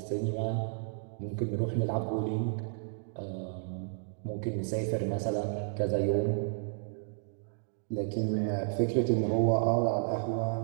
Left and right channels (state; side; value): silent; left; digital silence